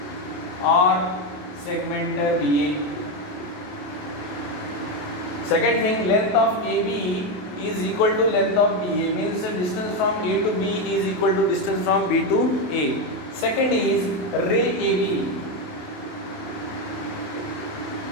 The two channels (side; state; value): right; late; 28 ms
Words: or segment BA. Second thing, length of AB is equal to length of BA, means the distance from A to B is equal to distance from B to A. Second is ray AB.